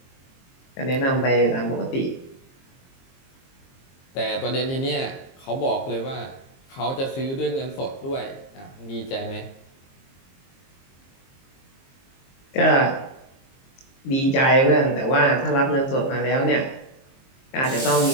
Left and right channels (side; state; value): right; late; 22 ms